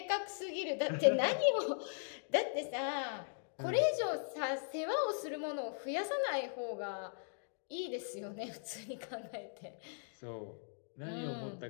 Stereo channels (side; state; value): right; silent; digital silence